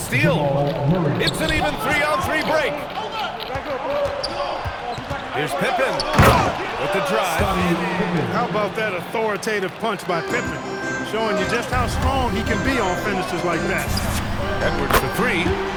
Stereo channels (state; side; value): identical; both; correlation 1.00